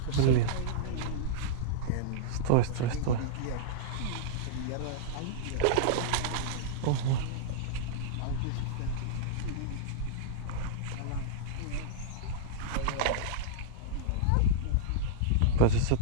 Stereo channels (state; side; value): different; both; correlation -0.02